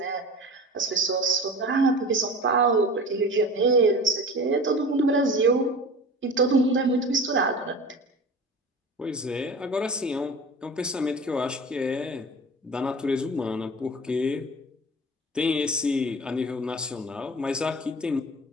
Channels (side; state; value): both; normal; correlation 0.36